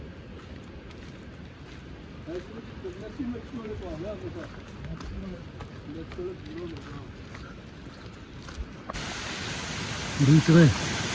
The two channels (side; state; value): both; identical; correlation 1.00